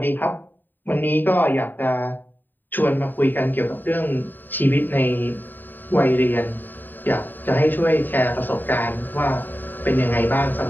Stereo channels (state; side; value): late; right; 0.090 ms